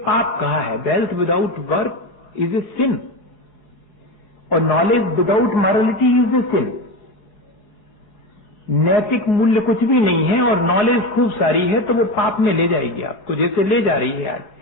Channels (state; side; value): late; right; 4.8 ms